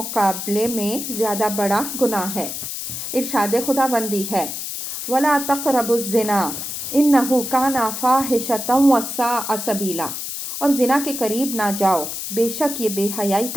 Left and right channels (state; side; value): noise; left; hiss, 6 dB below the sound